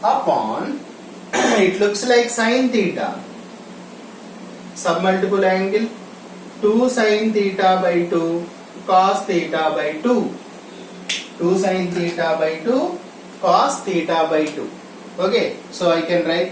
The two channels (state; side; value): identical; both; correlation 1.00